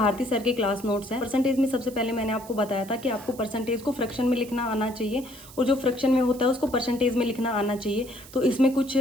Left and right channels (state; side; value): noise; right; hiss, 19 dB below the sound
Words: सर के क्लास नोट्स हैं। परसेंटेज में सबसे पहले मैंने आपको बताया था कि आपको परसेंटेज को फ्रैक्शन में लिखना आना चाहिए, और जो फ्रैक्शन में होता है उसको परसेंटेज में लिखना आना चाहिए। तो इसमें कुछ